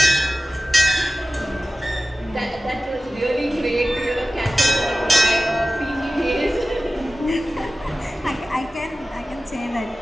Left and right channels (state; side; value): normal; both; correlation 0.95